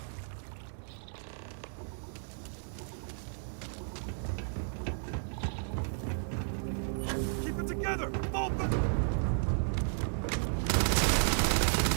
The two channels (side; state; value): left; silent; digital silence